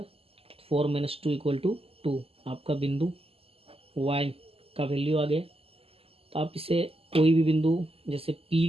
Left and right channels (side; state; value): left; late; 0.28 ms